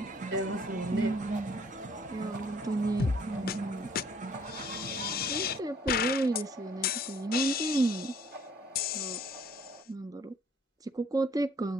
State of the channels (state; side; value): normal; both; correlation 0.60